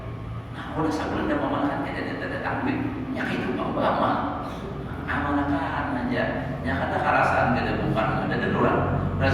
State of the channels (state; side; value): identical; both; correlation 1.00